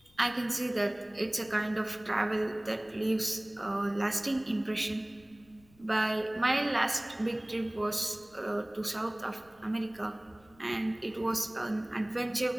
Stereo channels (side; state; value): left; noise; rumble, 29 dB below the sound